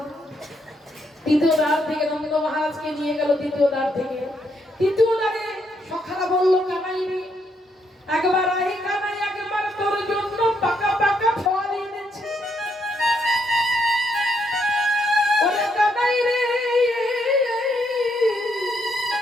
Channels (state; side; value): normal; both; correlation 0.76